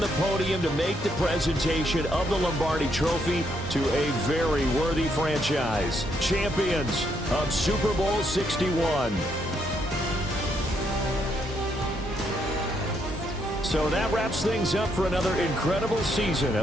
podium to make the presentation of the Lombardi Trophy to a very worthy franchise. Champions of Super Bowl 61. So that wraps things up for another incredible season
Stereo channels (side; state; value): both; normal; correlation 0.75